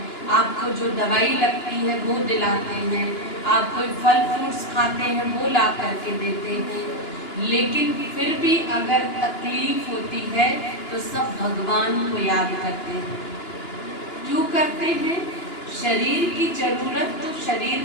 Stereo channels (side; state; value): right; late; 2.9 ms